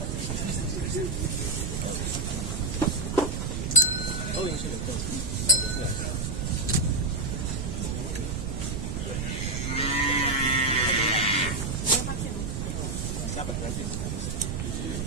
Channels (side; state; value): right; noise; rumble, 2 dB below the sound